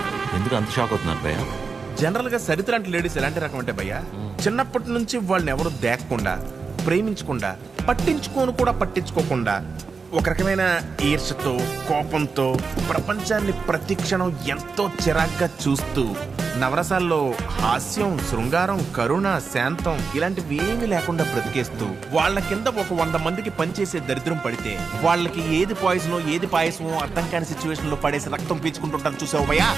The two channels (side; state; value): left; quieter; 4.9 dB